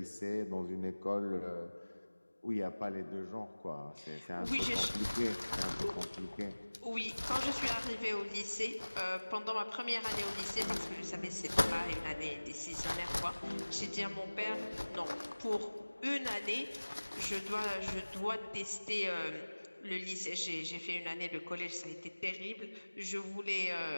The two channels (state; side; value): inverted; both; correlation -1.00